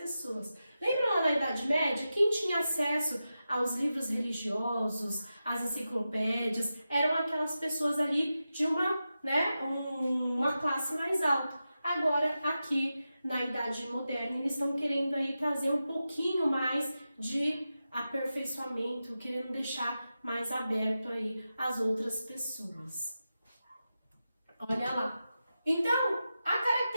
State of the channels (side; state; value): both; inverted; correlation -0.91